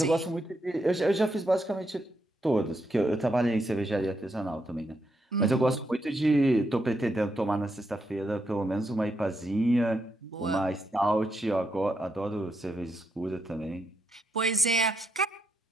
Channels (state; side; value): normal; both; correlation 0.80